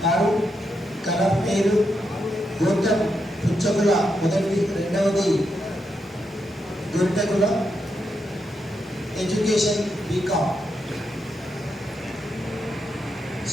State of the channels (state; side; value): normal; both; correlation 0.83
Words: కలర్ పేరు గోత్రం పుచ్చకుల, మొదటిది, రెండవది గొర్రెకుల, education BCom,